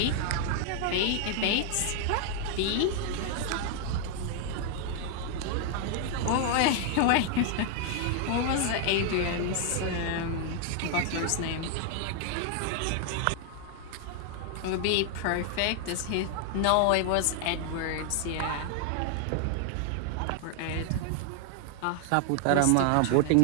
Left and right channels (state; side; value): different; both; correlation 0.00